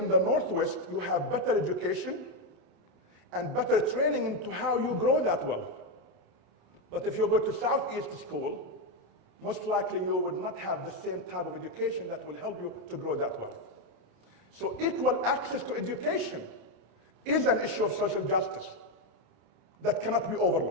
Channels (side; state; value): left; late; 28 ms